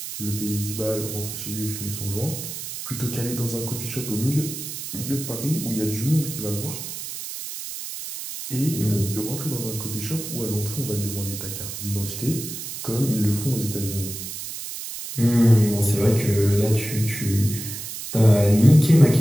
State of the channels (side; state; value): right; noise; hiss, 8 dB below the sound